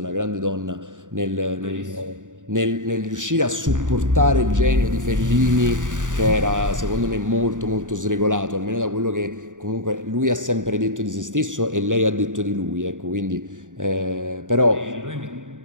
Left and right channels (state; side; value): late; left; 0.87 ms